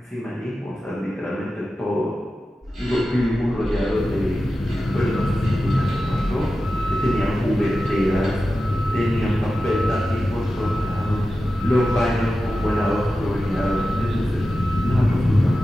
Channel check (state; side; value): normal; both; correlation 0.93